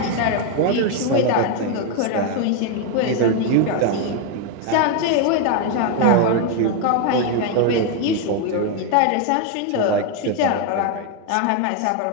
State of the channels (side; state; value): both; different; correlation 0.01